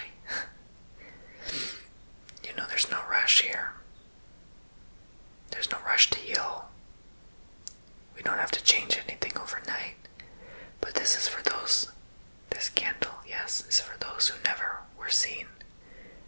There's no rush here. There's no rush to heal. We don't have to change anything overnight. But this is for those, this candle, yes, is for those who never were seen.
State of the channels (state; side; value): inverted; both; correlation -1.00